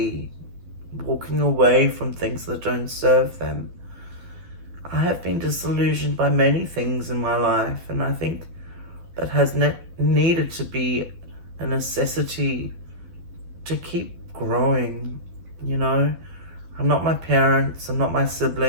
walking away from things that don't serve them. I have been disillusioned by many things in my life, and I think that has needed to be a necessity to keep growing. I'm not my parents, I'm not my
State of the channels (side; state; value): left; late; 12 ms